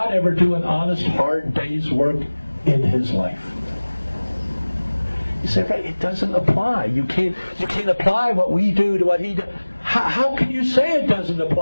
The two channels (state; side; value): inverted; both; correlation -1.00